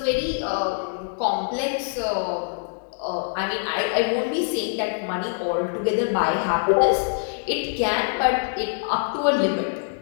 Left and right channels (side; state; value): right; silent; digital silence